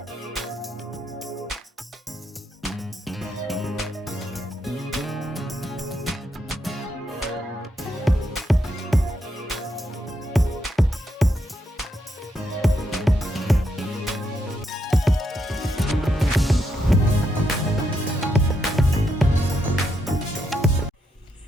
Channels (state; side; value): normal; both; correlation 0.80